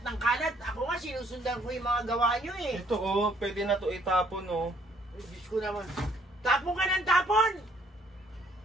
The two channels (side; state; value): both; normal; correlation 0.64